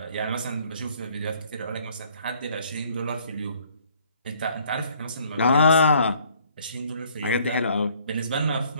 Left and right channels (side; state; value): both; inverted; correlation -0.61